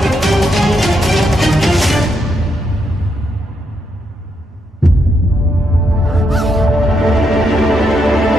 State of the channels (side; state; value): both; normal; correlation 0.79